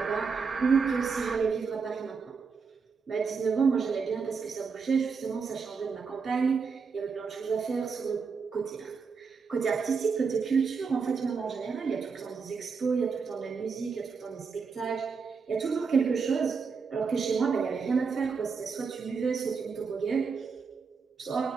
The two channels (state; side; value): quieter; left; 5.3 dB